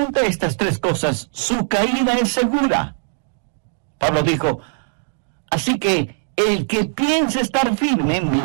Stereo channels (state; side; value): silent; left; 66 dB below the other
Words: estas tres cosas, su caída es segura. Pablo dijo, así que el que piense estar firme,